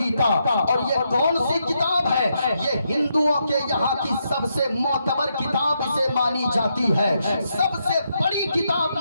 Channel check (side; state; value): both; inverted; correlation -0.81